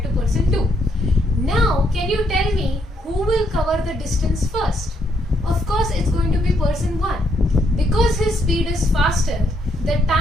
to person 2. Now can you tell me who will cover the distance first? Of course it's going to be person 1. Because his speed is faster, the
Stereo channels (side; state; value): both; normal; correlation 0.74